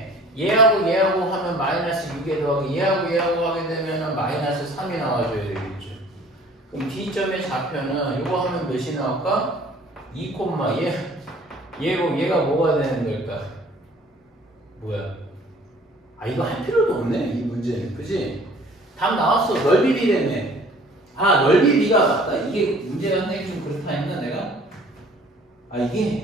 얘하고 얘하고 하면 마이너스 6에 더하기 얘하고 얘하고 하게 되면 마이너스 3이 나와줘야 되겠죠. 그럼 D점의 좌표는 이거 하면 몇이 나올까? 2, 얘가 뭐가 되는 걸까? 뭐야? 아 이거 할 필요도 없네 이 문제는. 그지? 답 나왔어. 넓이 비례네. 아 넓이 비가 맞다. 이게 문제가 선생님 좀 그렇다 했나 내가? 아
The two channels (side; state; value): both; normal; correlation 0.52